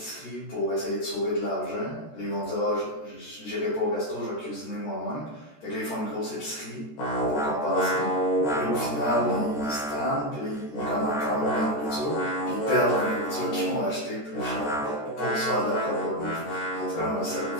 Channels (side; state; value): right; late; 13 ms